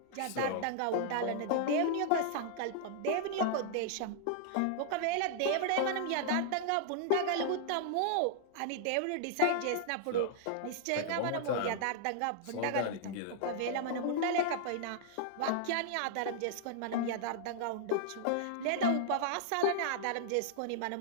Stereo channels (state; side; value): different; both; correlation -0.01